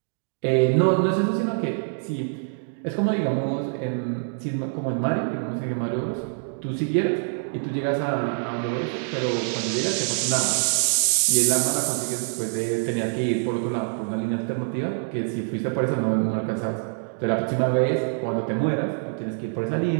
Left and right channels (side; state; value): left; silent; digital silence